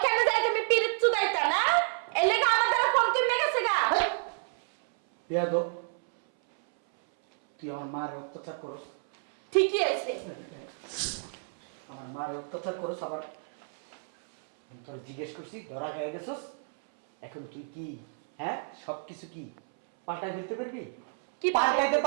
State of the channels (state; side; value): silent; left; 58 dB below the other